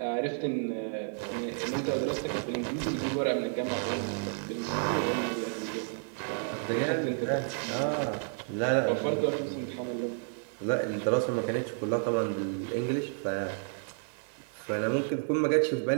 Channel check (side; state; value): left; silent; 57 dB below the other